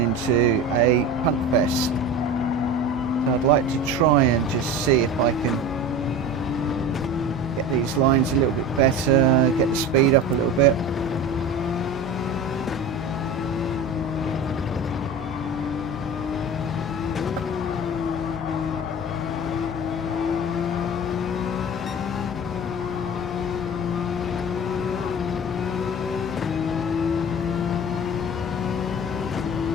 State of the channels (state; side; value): normal; both; correlation 0.33